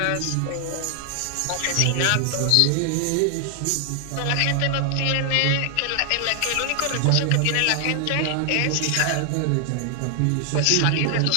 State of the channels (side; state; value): both; different; correlation 0.00